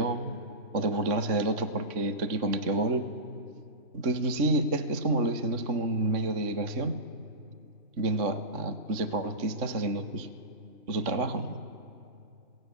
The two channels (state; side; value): late; left; 3.5 ms